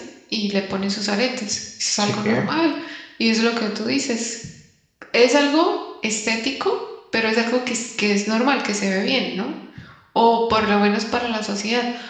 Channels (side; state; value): both; identical; correlation 1.00